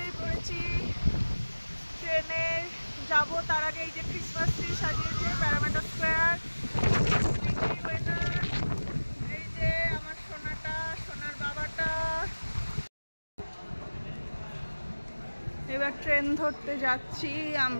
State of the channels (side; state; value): both; inverted; correlation -1.00